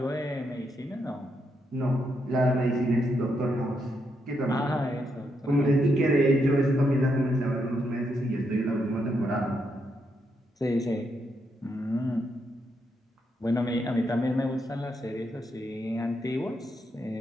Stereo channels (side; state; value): both; normal; correlation 0.80